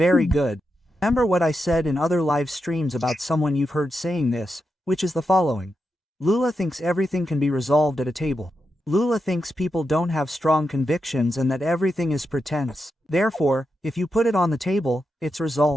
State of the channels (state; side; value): normal; both; correlation 0.87